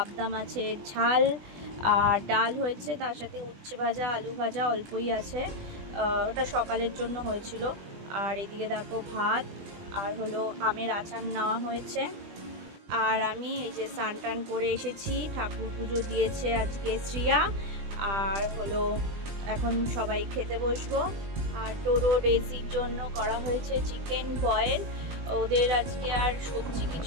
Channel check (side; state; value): left; late; 20 ms